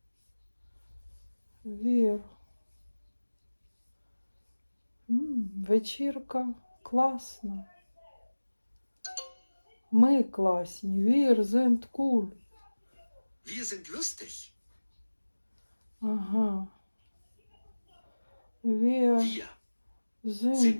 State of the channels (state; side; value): inverted; both; correlation -1.00